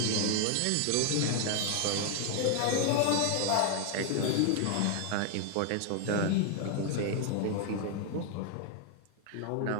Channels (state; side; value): different; both; correlation 0.01